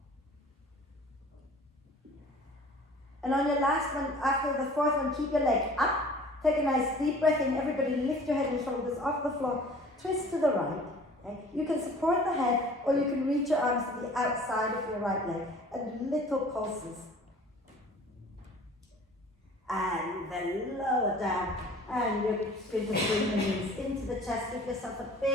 And on your last one, after the 4th one, keep your leg up. Take a nice deep breath in. Everybody lift your head and shoulders off the floor. Twist to the right. Okay. You can support the head, or you can reach your arms to the outside of your right leg. And little pulses. And then lower down. And you're just going to bring the knees into the chest. Give yourself a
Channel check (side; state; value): both; normal; correlation 0.48